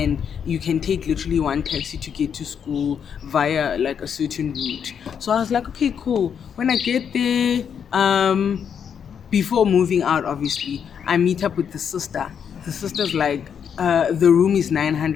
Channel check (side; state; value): right; quieter; 7.6 dB